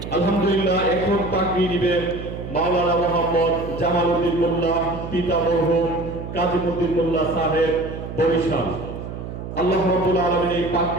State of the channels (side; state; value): right; noise; hum, 9 dB below the sound